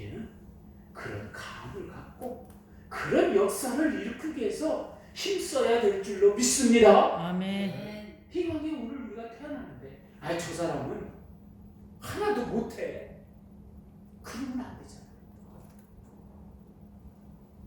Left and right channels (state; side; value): identical; both; correlation 1.00